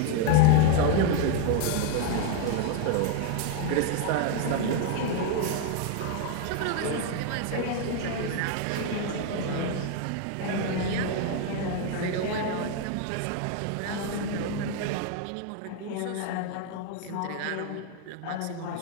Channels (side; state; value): both; different; correlation 0.01